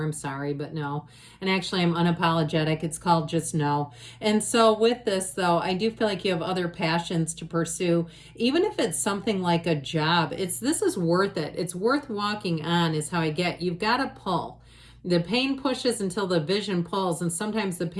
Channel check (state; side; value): identical; both; correlation 1.00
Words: I'm sorry, but no. And actually I'm unapologetic. It's called just no. And so with this though, I do feel like you have other passions to pursue. Even if it's something like a job, this is worth it. It's worth walking on is how I get. You've got to pull. The pain pushes until the vision pulls, and sometimes the